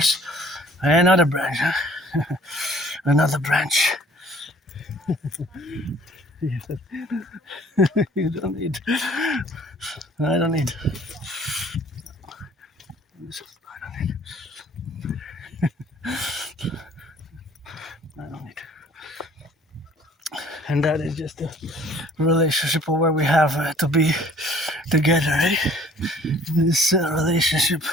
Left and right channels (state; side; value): normal; both; correlation 0.55